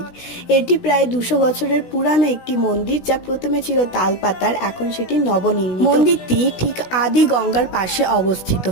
এটি প্রায় 200 বছরের পুরানো একটি মন্দির, যা প্রথমে ছিল তালপাতার, এখন সেটি নবনির্মিত। মন্দিরটি ঠিক আদি গঙ্গার পাশে অবস্থিত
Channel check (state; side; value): late; right; 16 ms